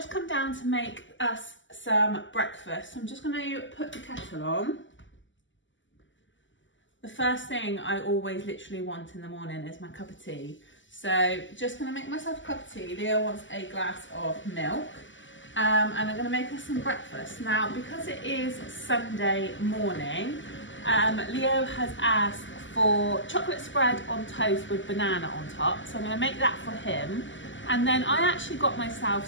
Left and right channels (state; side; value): late; right; 0.55 ms